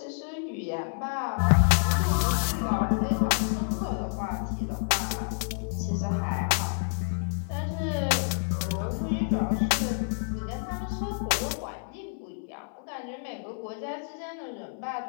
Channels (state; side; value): silent; right; 59 dB below the other